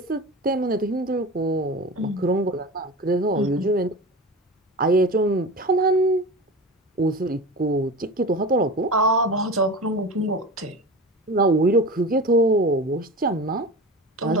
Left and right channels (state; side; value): normal; both; correlation 0.31